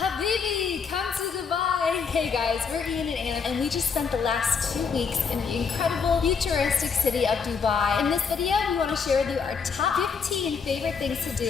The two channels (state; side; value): quieter; right; 5.8 dB